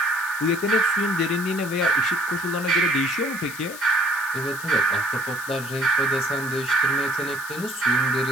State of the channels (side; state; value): left; noise; hiss, 13 dB below the sound